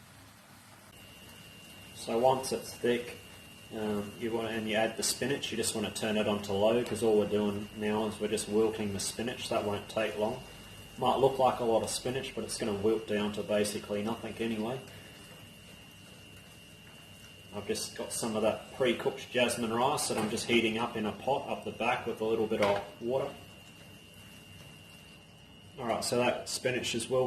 So once it's thick, you add the spinach, you just want to turn it onto low, because all we're doing now is we're just wilting the spinach. That won't take long. Might look like a lot of spinach, but it's going to wilt down to basically nothing anyway. I've just got some of that pre-cooked jasmine rice that I'm just heating up in a pot up the back with a little bit of water. Alright, so that spinach is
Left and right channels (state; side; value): identical; both; correlation 1.00